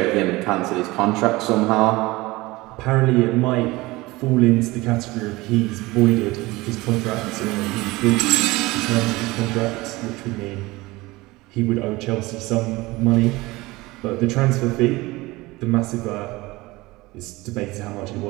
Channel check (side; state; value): left; quieter; 21.0 dB